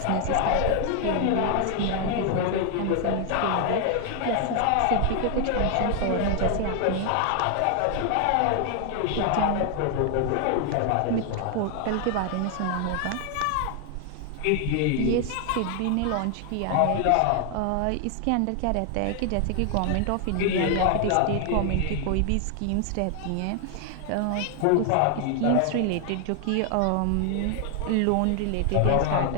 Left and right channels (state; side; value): different; both; correlation 0.00